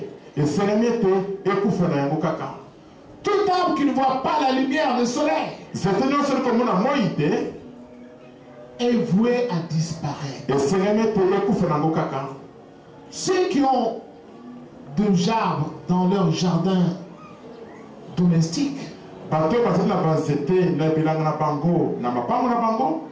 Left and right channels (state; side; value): identical; both; correlation 1.00